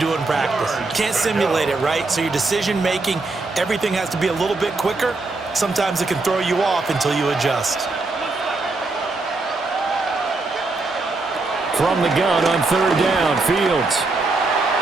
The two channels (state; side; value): quieter; left; 3.5 dB